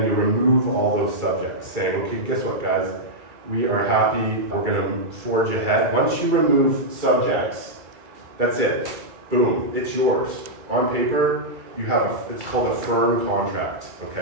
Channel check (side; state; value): left; late; 2.3 ms